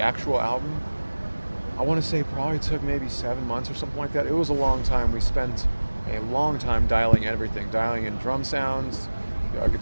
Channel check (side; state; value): both; inverted; correlation -1.00